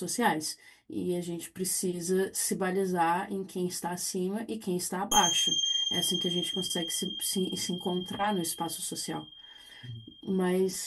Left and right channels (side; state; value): both; identical; correlation 1.00